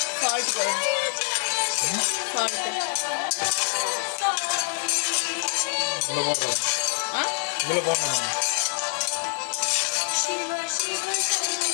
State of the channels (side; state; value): right; silent; digital silence